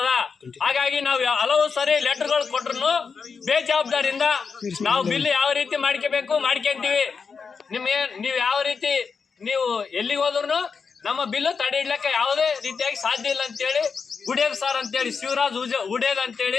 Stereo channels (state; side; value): quieter; right; 5.5 dB